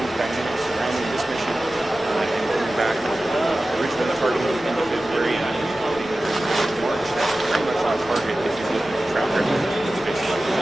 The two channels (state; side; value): normal; both; correlation 0.95